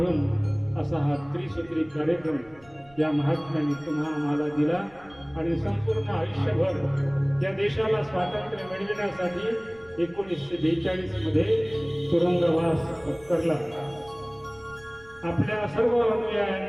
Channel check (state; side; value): noise; right; rumble, 26 dB below the sound